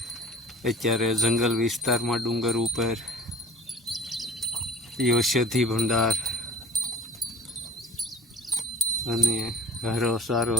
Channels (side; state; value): both; normal; correlation 0.48